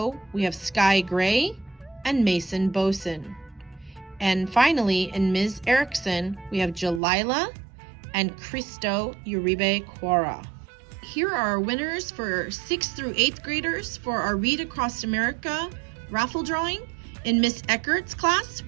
we have Sky Gray and Mason Boson. And finally, in Ms. Erickson, we have Jalila and Cristo Uribe Quara. Here are our winners for 6th through 8th graders for our Read Across America raffle drawing. In Miss Eckert's class,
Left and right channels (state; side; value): drops out; left; at 7.0 s